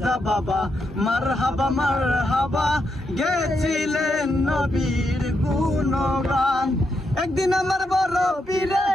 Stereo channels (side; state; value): both; normal; correlation 0.82